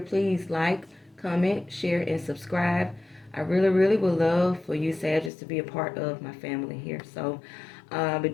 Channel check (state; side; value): drops out; right; at 5.3 s